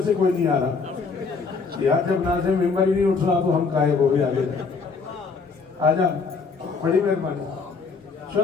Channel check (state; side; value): quieter; right; 4.7 dB